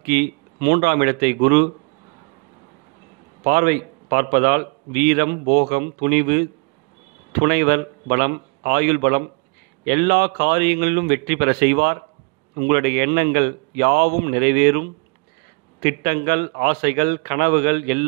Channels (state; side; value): quieter; left; 33.8 dB